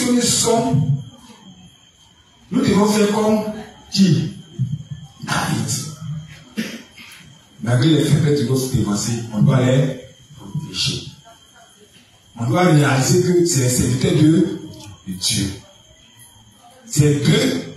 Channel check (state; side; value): identical; both; correlation 1.00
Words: que nous sommes, nous devons faire comme qui? David. Malgré les faiblesses de notre dévancé, on doit les protéger. On doit réaliser que c'est les serviteurs de Dieu. C'est d'eux